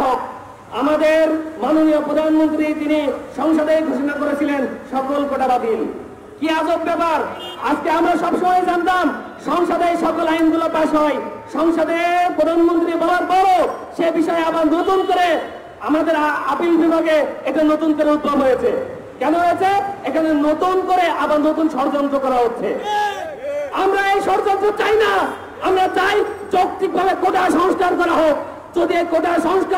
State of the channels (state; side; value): identical; both; correlation 1.00